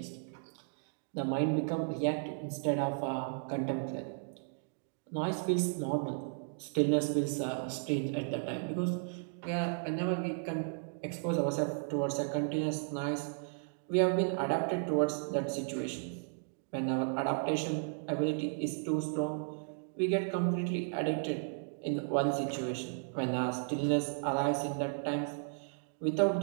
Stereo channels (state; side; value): silent; left; digital silence